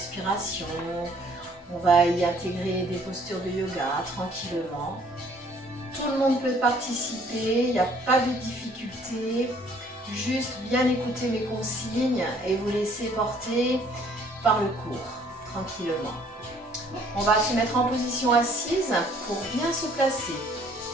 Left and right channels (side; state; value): both; normal; correlation 0.59